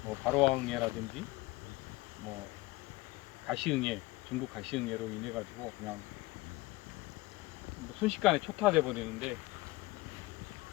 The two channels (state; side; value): quieter; right; 20.5 dB